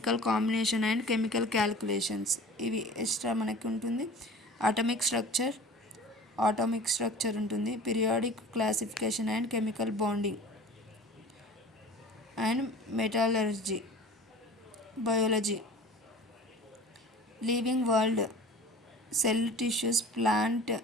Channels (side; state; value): both; normal; correlation 0.41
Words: combination and chemical calculations, ఇవి extra మనకి ఉంటుంది. Atomic structure ఉంటుంది. Periodic classification and chemical bonding and metallurgy, biology, living world, cell tissues, plant